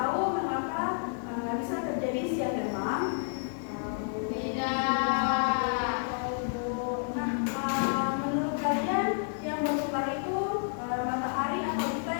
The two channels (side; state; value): right; silent; 58 dB below the other